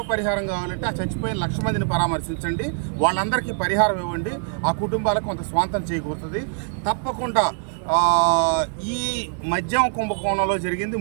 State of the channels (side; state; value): left; silent; 63 dB below the other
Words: పరిహారం కావాలంటే ఆ చచ్చిపోయిన 1,00,000 మందిని పరామర్శించండి, వాళ్ళందరికీ పరిహారం ఇవ్వండి, ఆ కుటుంబాలకు కొంత స్వాంతం చేకూరుతుంది. తప్పకుండా ఈ మద్యం కుంభకోణంలో జరిగింది